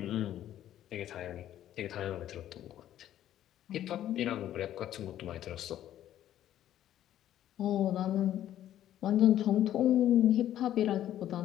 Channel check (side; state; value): right; quieter; 11.9 dB